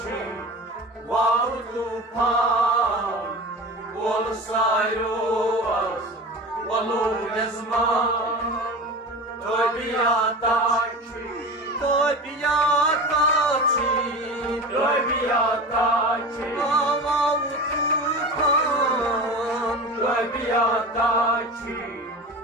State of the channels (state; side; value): normal; both; correlation 0.32